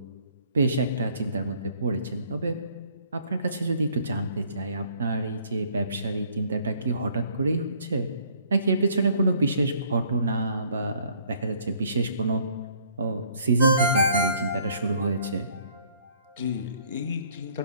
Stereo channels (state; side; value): inverted; both; correlation -0.61